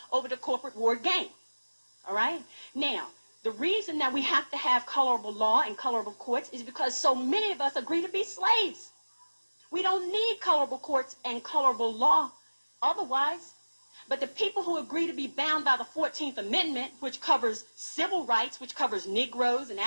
over the corporate ward game. All right? Now, the reason that we have to have colorable law and colorable courts is because so many of us agree to be slaves. We don't need colorable courts and colorable law otherwise. But the people who agree to be bound by the 14th Amendment, which covers civil rights, which covers Negroes and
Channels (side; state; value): both; inverted; correlation -1.00